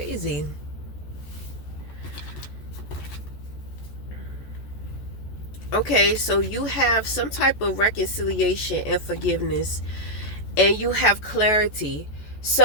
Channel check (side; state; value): right; late; 14 ms